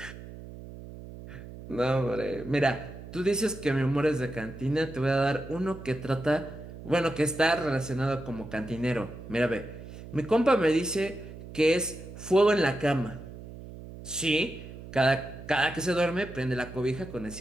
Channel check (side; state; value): right; noise; hum, 14 dB below the sound